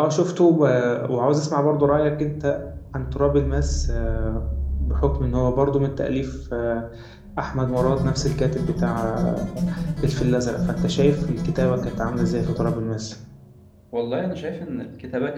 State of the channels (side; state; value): both; identical; correlation 1.00